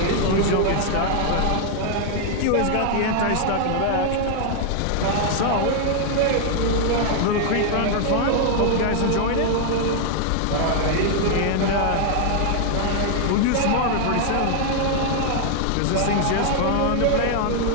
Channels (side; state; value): both; different; correlation 0.00